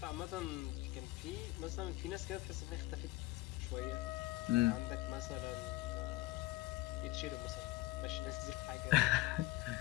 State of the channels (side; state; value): right; quieter; 18.7 dB